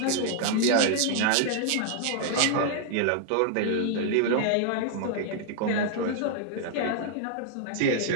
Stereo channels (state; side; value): different; both; correlation 0.00